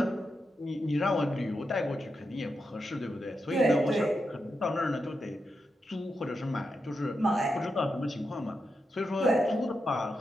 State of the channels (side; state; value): both; normal; correlation 0.86